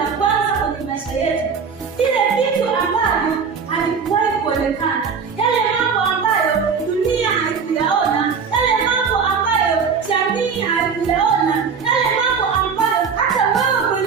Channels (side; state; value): left; quieter; 5.9 dB